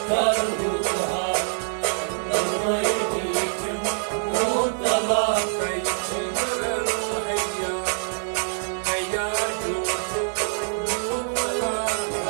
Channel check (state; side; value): silent; left; digital silence